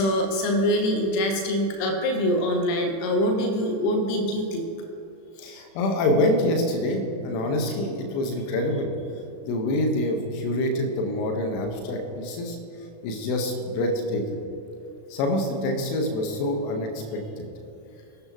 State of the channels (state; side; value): late; right; 36 ms